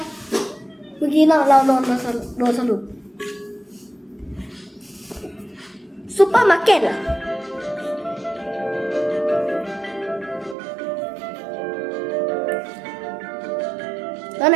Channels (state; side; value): drops out; left; at 10.6 s